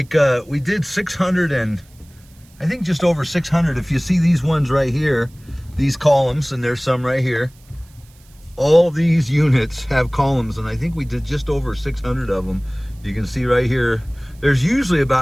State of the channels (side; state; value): right; noise; hiss, 29 dB below the sound